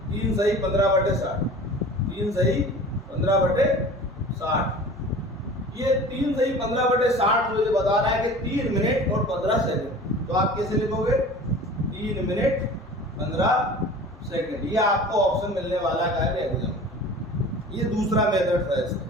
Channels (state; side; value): normal; both; correlation 0.41